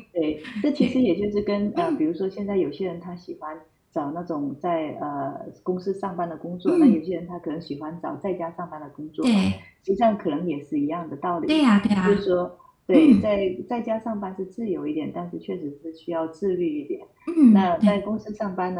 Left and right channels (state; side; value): identical; both; correlation 1.00